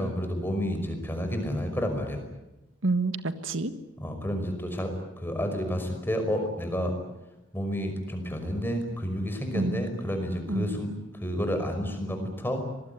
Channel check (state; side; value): normal; both; correlation 0.74